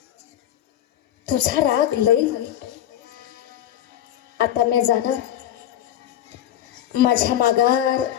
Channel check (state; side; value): quieter; right; 11.6 dB